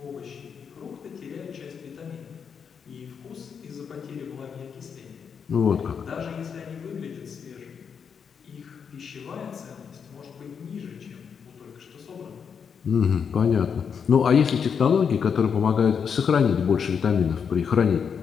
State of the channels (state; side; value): quieter; right; 6.8 dB